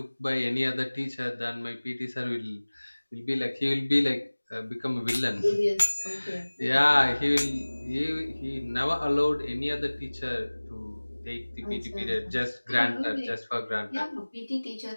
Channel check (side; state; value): both; inverted; correlation -1.00